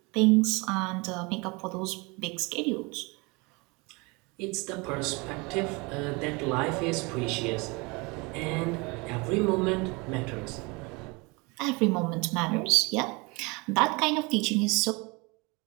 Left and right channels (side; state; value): left; quieter; 27.2 dB